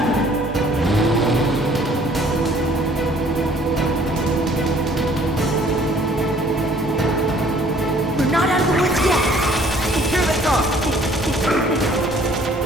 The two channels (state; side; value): normal; both; correlation 0.57